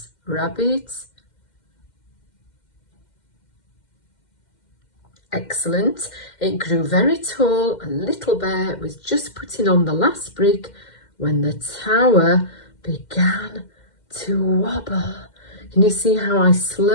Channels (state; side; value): late; right; 2.1 ms